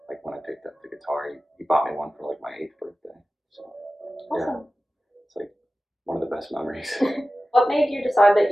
Like when I picked up the guitar, he bought me one for like my 8th birthday. So yeah, Awesome. it's like one of the best memories. What made you decide that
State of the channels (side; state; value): both; normal; correlation 0.95